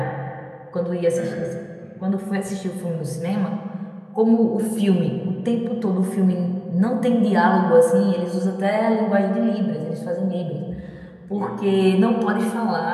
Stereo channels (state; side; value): identical; both; correlation 1.00